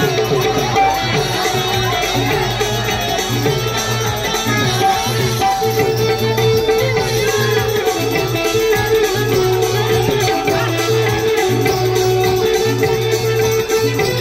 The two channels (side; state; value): both; identical; correlation 1.00